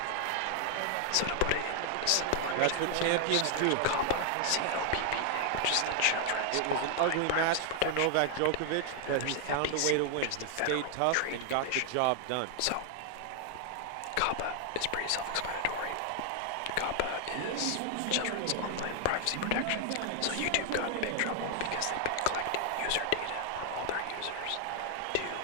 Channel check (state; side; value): different; both; correlation 0.00